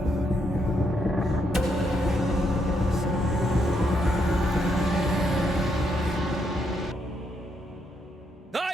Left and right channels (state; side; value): normal; both; correlation 0.77